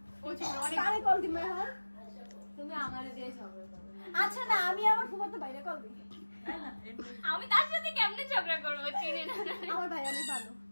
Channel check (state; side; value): inverted; both; correlation -1.00